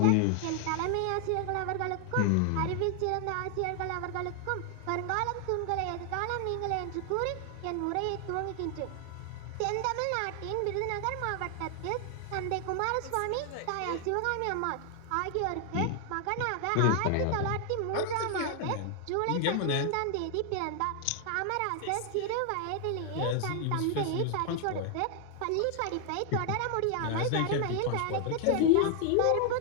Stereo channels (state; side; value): different; both; correlation 0.00